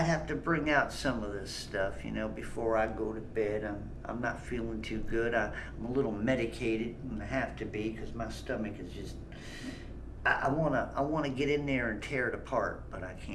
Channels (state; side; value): identical; both; correlation 1.00